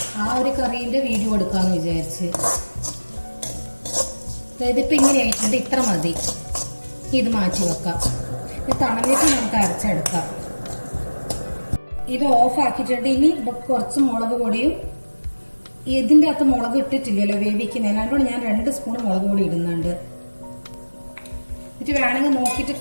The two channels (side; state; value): both; inverted; correlation -1.00